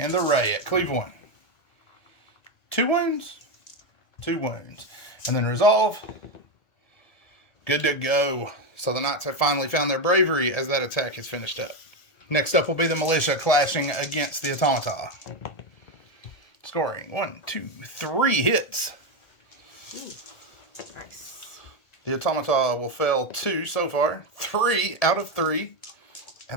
the Ray at Cleve 1. 2 wounds. 2 wounds. And then Resolve. Good to go. So the Knights have finally found their bravery as that attack is finished up. Next up will be the Militia clashing against the Automata. Scoring 1, 2, 3 hits. Nice. The Automata will fail 2 so far. 3 out of 3.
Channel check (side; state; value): right; late; 1.7 ms